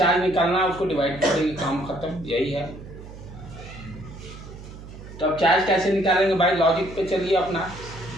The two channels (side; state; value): right; noise; hum, 15 dB below the sound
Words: निकालना है, उसको डिवाइड कर देंगे, काम खत्म, यही है। तो अब चार्ज कैसे निकालेंगे भाई, लॉजिक पे चलिए अपना।